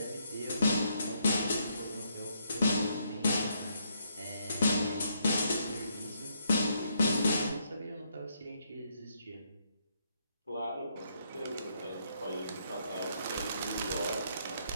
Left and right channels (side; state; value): both; inverted; correlation -0.74